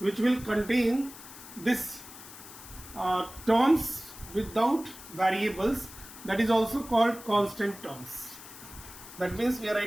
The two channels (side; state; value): left; noise; hiss, 16 dB below the sound